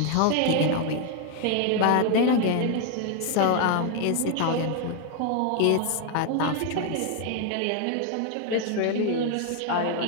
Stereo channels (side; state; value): both; different; correlation 0.00